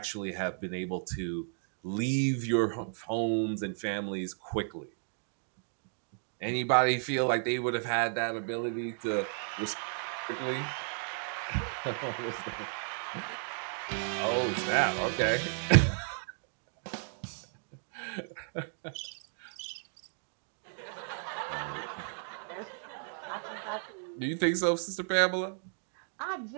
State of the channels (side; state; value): left; silent; 55 dB below the other